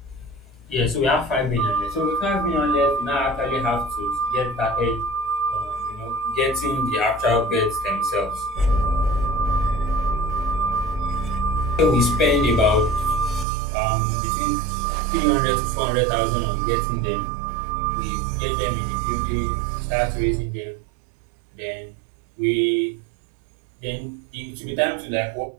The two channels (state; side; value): drops out; left; at 13.5 s